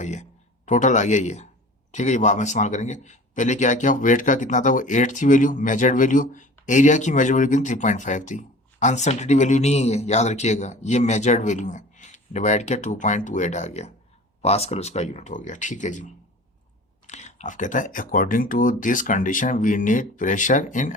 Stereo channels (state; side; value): normal; both; correlation 0.41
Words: ये टोटल आ गया ये। ठीक है, ये बाद में इस्तेमाल करेंगे। पहले क्या किया, वेट का कितना था, वो 8 थी वैल्यू, मेजर्ड वैल्यू। एरिया की मेजर्ड वैल्यू कितनी, 3.5 थी। अनसर्टेनिटी वैल्यू नहीं है, याद रखिएगा, ये मेजर्ड वैल्यू है। डिवाइड किया, 2.28 आ गया, पास्कल उसका यूनिट हो गया। ठीक है जी, अब कहता है according to this condition we need pressure in